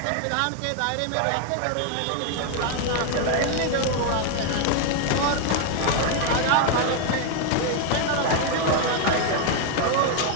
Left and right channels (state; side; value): different; both; correlation 0.01